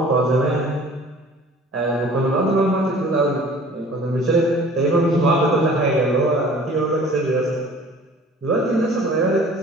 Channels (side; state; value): both; normal; correlation 0.48